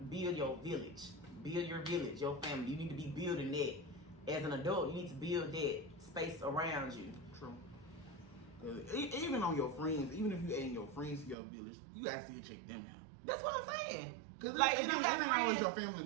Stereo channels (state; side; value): drops out; left; at 11.4 s